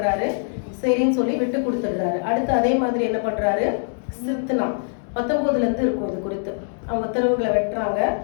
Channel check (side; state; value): right; silent; digital silence